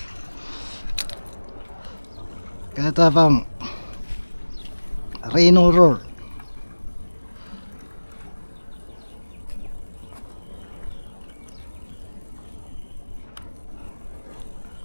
Kaya tapang Reno Roar.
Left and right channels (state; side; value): inverted; both; correlation -1.00